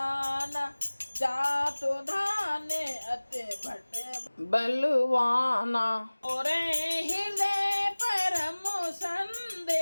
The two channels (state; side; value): inverted; both; correlation -1.00